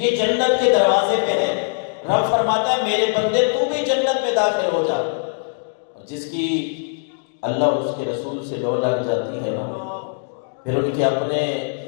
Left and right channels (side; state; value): right; silent; digital silence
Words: جنت کے دروازے پہ ہے. رب فرماتا ہے میرے بندے تو بھی جنت میں داخل ہو جا. جس کی اللہ اور اس کے رسول سے لو لگ جاتی ہے نا، پھر ان کے اپنے